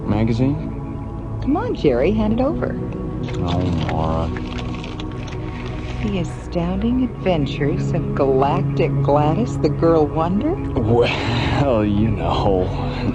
Magazine? Come on, Jerry, hand it over. Oh, Maura. The Astounding Adventures of Galactic Gladys, the Girl Wonder? Well, you know.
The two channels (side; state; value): both; identical; correlation 1.00